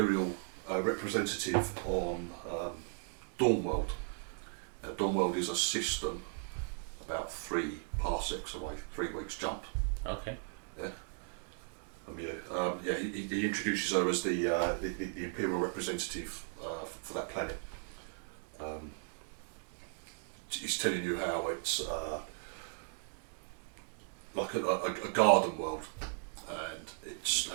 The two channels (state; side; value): silent; left; 53 dB below the other